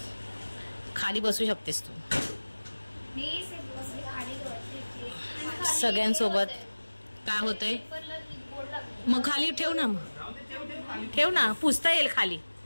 खाली बसू शकतेस तू सगळ्यांसोबत. काय होतंय मग? खाली ठेव ना, मग ठेव ना, पुसता येईल खाली.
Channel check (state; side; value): inverted; both; correlation -1.00